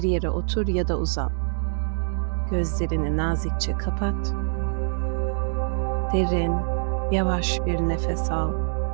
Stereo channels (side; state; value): left; silent; digital silence